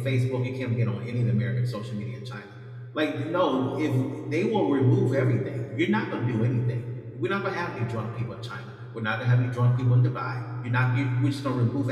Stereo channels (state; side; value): identical; both; correlation 1.00